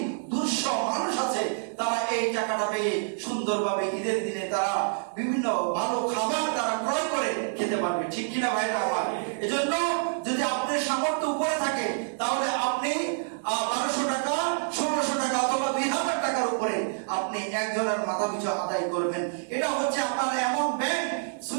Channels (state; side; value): silent; left; digital silence